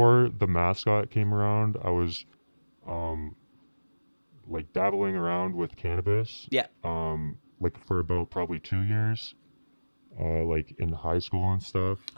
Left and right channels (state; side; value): inverted; both; correlation -1.00